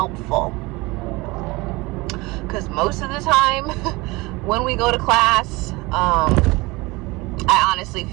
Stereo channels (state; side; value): quieter; left; 23.1 dB